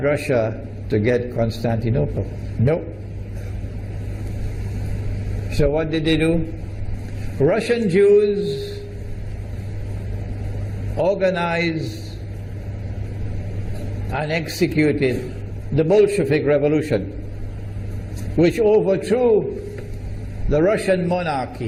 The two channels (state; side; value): identical; both; correlation 1.00